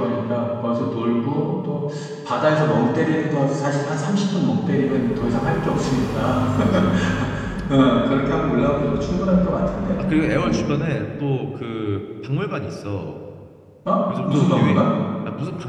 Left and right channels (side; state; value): both; identical; correlation 1.00